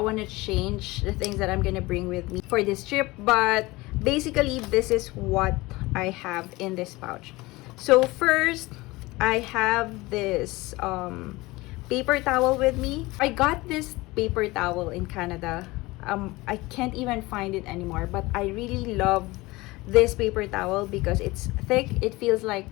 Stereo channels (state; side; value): quieter; right; 21.3 dB